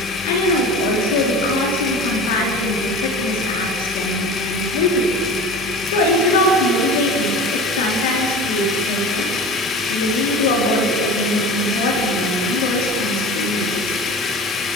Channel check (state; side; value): normal; both; correlation 0.36